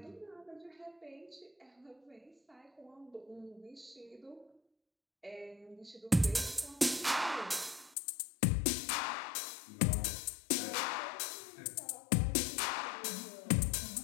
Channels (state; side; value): drops out; right; at 8.0 s